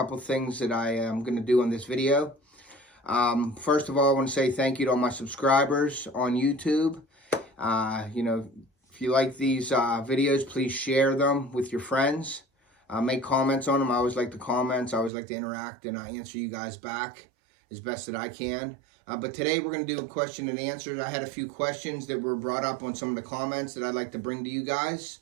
things that I am going to do on this video. First of all, I want to say thank you to all my subscribers on YouTube. If you like these videos, please share them with your friends. Make comments on them. I always like the comments. I always like to interact, and I answer you guys back as best that I can. But today we're going to do a question and answers. I had a few questions that were brought up on some of the comments that I'd like to bring to you guys.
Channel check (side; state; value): left; drops out; at 15.1 s